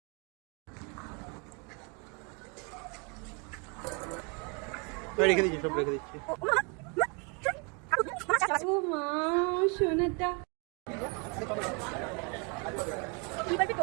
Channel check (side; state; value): left; quieter; 33.4 dB